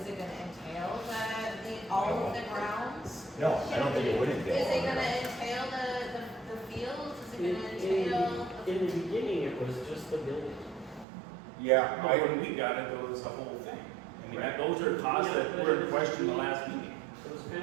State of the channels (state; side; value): drops out; left; at 11.1 s